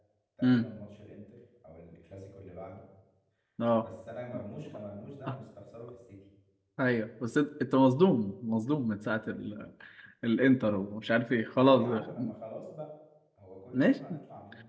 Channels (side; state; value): both; identical; correlation 1.00